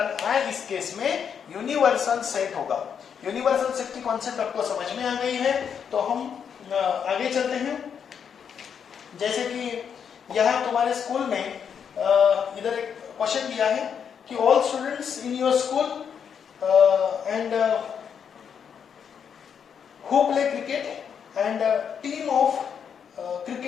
i इस केस में यूनिवर्सल सेट होगा। यूनिवर्सल सेट की कॉन्सेप्ट आपको समझ में आ गई है, तो हम आगे चलते हैं। जैसे कि यहाँ तुम्हारे स्कूल में इधर एक क्वेश्चन दिया है कि all students in your school and who play cricket and team of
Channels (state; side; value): quieter; right; 7.4 dB